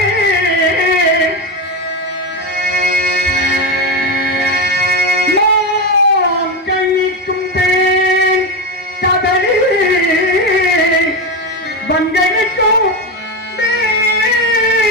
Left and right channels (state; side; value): normal; both; correlation 0.15